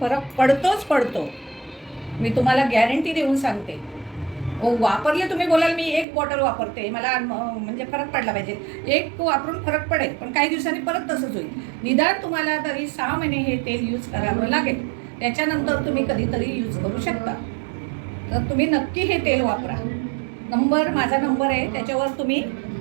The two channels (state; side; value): drops out; left; at 6.1 s